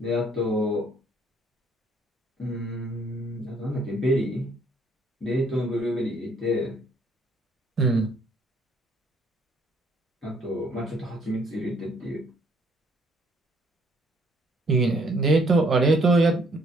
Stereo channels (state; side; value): normal; both; correlation 0.65